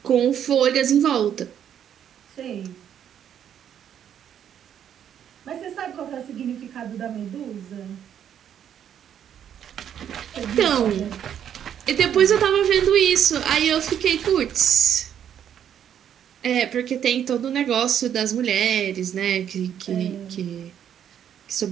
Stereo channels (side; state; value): left; quieter; 9.4 dB